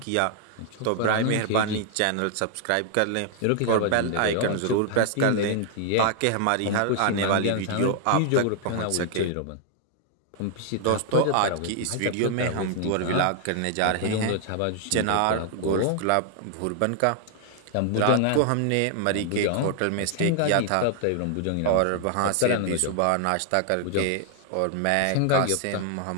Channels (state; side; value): different; both; correlation 0.00